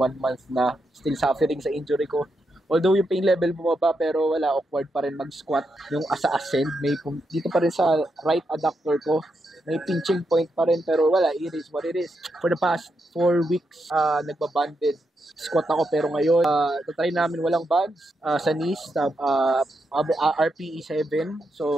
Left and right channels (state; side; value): normal; both; correlation 0.83